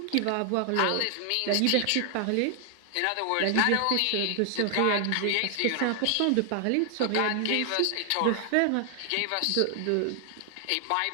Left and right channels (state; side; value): different; both; correlation 0.00